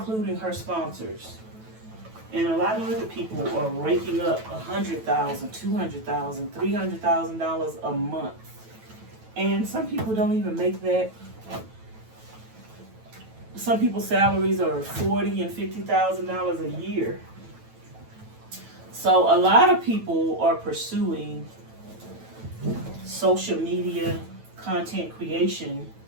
her sponsors. And a lot of other people are raking up $100,000, $200,000, $300,000 a month. And some people don't even make that. Some people's salaries are $40,000 and $50,000 a year. So a lot of people are pursuing social media content creation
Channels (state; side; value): late; left; 9.1 ms